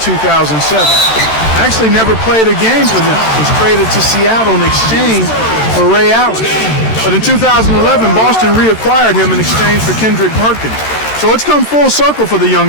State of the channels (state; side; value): late; right; 13 ms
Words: Actually never played a game for them. Was traded to Seattle in exchange for Ray Allen. But in 2011, Boston reacquired him in exchange for Kendrick Perkins. So it's come full circle for the